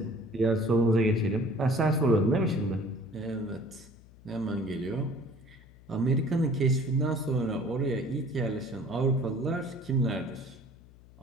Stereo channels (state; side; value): noise; left; hum, 23 dB below the sound